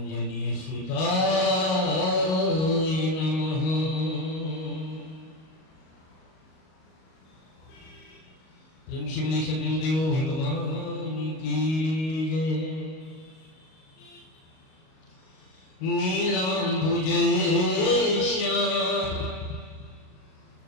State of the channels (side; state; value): right; late; 38 ms